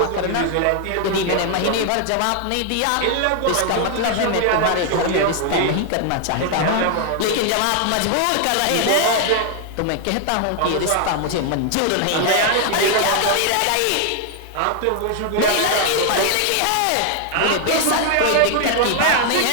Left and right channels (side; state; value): both; different; correlation 0.00